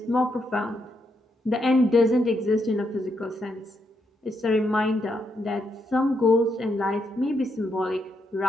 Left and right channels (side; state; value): both; normal; correlation 0.79